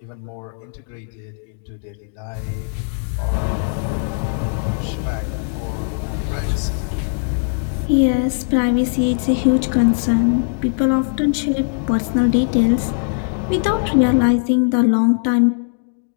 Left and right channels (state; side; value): silent; right; digital silence